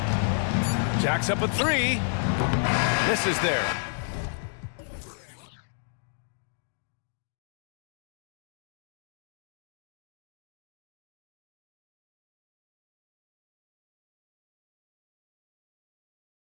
Jacks up a 3. Misses there.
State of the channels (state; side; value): silent; right; digital silence